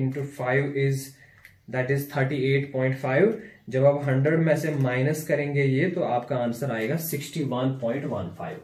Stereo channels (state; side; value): identical; both; correlation 1.00